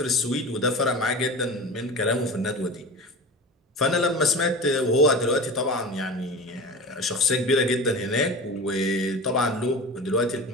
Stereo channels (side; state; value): both; normal; correlation 0.32